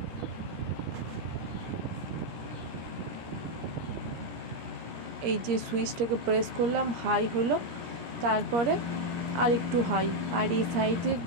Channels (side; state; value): left; late; 17 ms